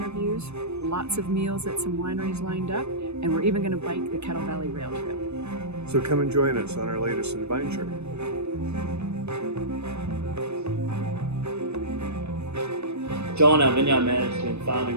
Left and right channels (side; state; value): left; late; 0.81 ms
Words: lots of meals at some wineries lined up, and we're even going to bike the Kettle Valley Rail Trail. So come and join us on our latest AdVINEture. John, our vineyard manager, has been